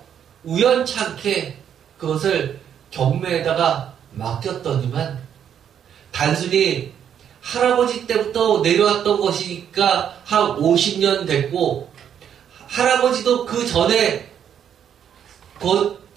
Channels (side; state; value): left; quieter; 8.9 dB